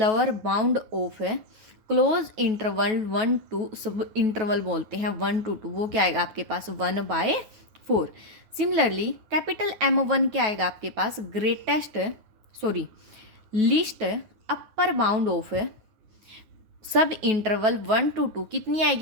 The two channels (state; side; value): late; left; 9.2 ms